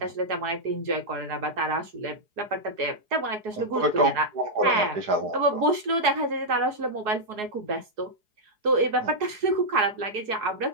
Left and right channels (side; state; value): left; late; 4.8 ms